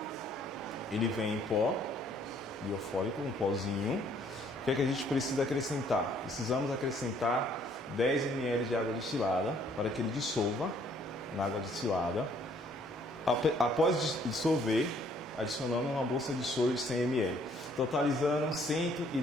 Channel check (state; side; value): normal; both; correlation 0.63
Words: Ele vem em pó, biofólico, um pozinho. O que é que a gente precisa acrescentar? Precisamos acrescentar 10 ml de água destilada para que ele dissolva na água destilada. Após dissolver, adicionando uma bolsa de soro de 100 ml, totalizando